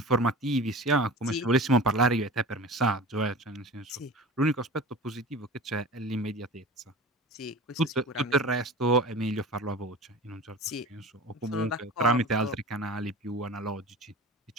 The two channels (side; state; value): both; normal; correlation 0.36